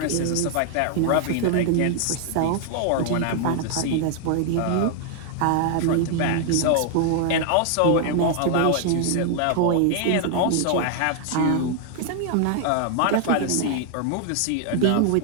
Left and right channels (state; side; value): different; both; correlation 0.00